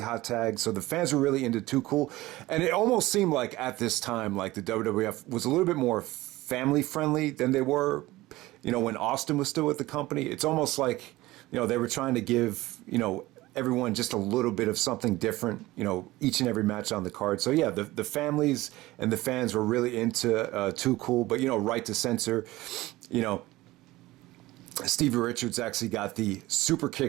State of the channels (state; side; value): quieter; left; 18.4 dB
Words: tag, so the fans were really into Too Cool, and it almost seemed like at this time, like the WWF was a little bit more family friendly than they were, when Austin was still with the company. It's almost like, they were trying to give, everyone just a little bit of something different, each and every match on the card. So yeah, the families and the fans were really into Too Cool, but Right to Censor, Stevie Richards actually got the super